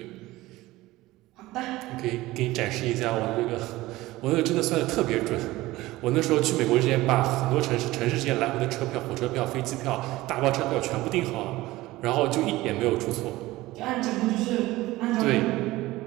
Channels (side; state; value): left; quieter; 18.3 dB